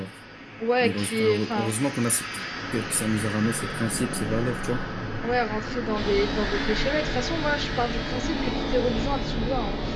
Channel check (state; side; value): identical; both; correlation 1.00